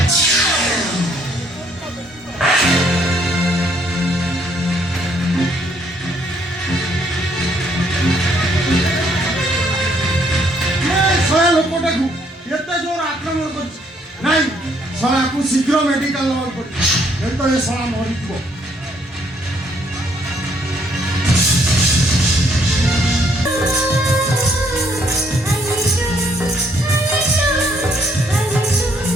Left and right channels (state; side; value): normal; both; correlation 0.68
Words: ଶଳା ଲୋକଟାକୁ ଏତେ ଜୋର ଆକ୍ରମଣ କରିଛି ନାଇଁ ଶଳାକୁ ଶୀଘ୍ର ମେଡିକାଲ ନେବାକୁ ପଡିବ ଏ ତ ଏ ଶଳା ମରିଯିବ